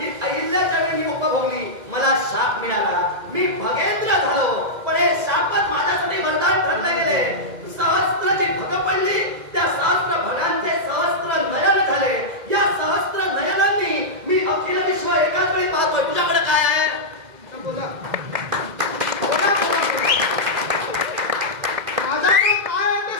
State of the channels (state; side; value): late; left; 2.0 ms